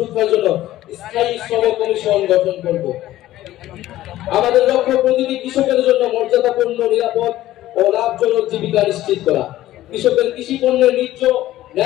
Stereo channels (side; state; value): right; quieter; 14.7 dB